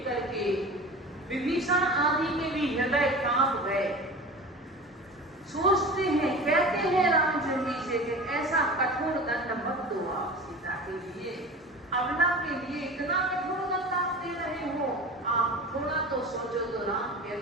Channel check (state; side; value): normal; both; correlation 0.35